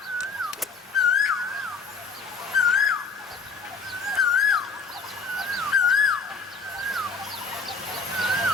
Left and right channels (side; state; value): right; quieter; 4.5 dB